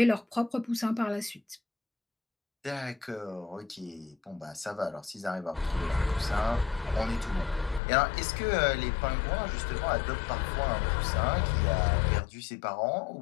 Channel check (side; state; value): right; drops out; at 7.8 s